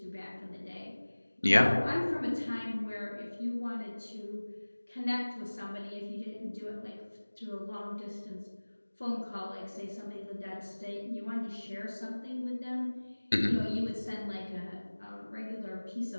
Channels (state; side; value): inverted; both; correlation -1.00